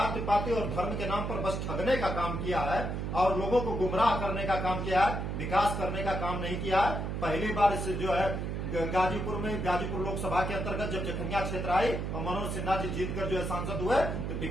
पाति और धर्म के नाम पर बस ठगने का काम किया है और लोगों को गुमराह करने का काम किया है, विकास करने का काम नहीं किया है। पहली बार इस जो है गाजीपुर लोकसभा के अंतर्गत जब जखनिया क्षेत्र आई और मनोज सिन्हा जी जीतकर जो है सांसद हुए, तो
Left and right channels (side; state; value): right; noise; hum, 3 dB below the sound